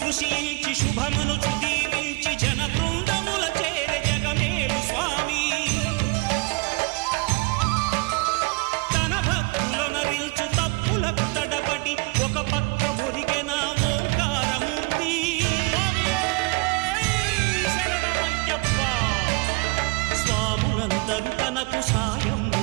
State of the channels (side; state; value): left; quieter; 27.1 dB